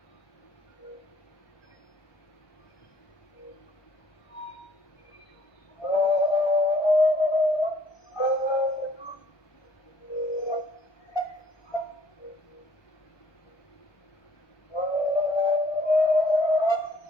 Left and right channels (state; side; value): late; right; 1.2 ms